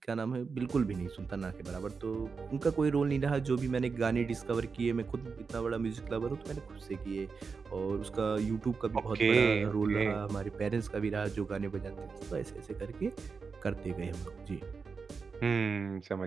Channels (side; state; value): left; quieter; 5.1 dB